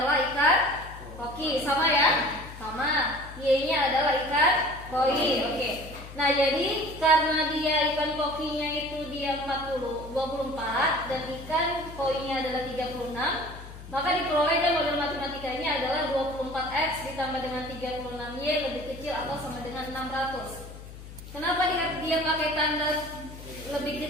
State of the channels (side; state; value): left; noise; hum, 14 dB below the sound